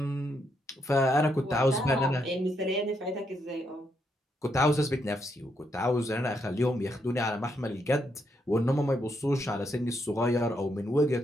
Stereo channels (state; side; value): normal; both; correlation 0.78